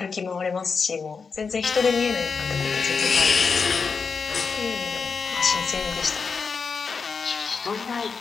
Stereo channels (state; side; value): quieter; right; 5.2 dB